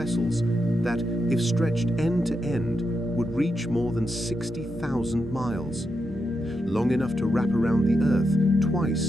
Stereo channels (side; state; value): both; normal; correlation 0.85